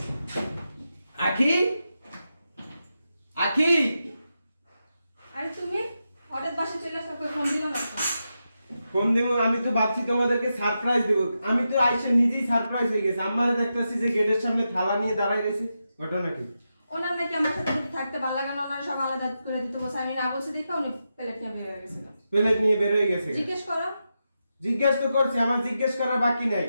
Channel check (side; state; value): both; inverted; correlation -0.88